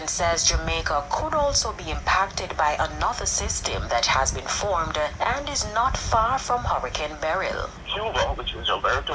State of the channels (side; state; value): both; identical; correlation 1.00